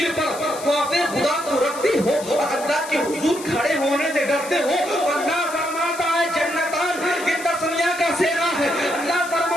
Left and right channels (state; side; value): noise; left; hiss, 13 dB below the sound